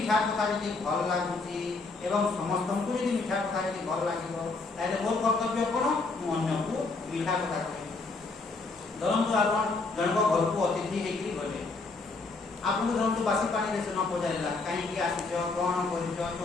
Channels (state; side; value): quieter; right; 3.7 dB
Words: କଥା ଯଦି ଭଲ ଲାଗୁଛି ଏବଂ ସମସ୍ତଙ୍କୁ ଯଦି ମିଠା କଥା ଯଦି ଭଲ ଲାଗିବ ତାହେଲେ ମୋର କର୍ତ୍ତବ୍ୟ କଣ? ମୁଁ ଅନ୍ୟକୁ ମିଠା କଥା କହିବି। ଧରନ୍ତୁ ଆପଣ ଜଣଙ୍କ ଘରକୁ ଅତିଥି ହେଇକି ଗଲେ ଆପଣଙ୍କୁ ଧରନ୍ତୁ ବାସି ପାଣିରେ ସେ ନ ପଚାରିଲା କାହିଁକି ଆସିଛ କଣ କରିଛ